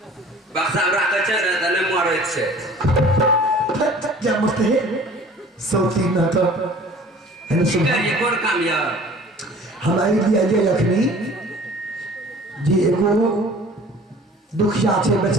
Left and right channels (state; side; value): normal; both; correlation 0.47